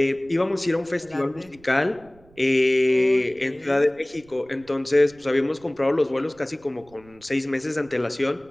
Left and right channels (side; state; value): right; noise; rumble, 27 dB below the sound